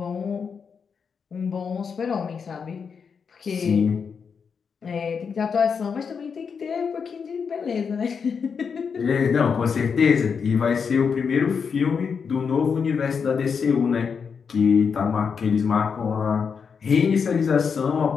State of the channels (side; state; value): right; quieter; 6.1 dB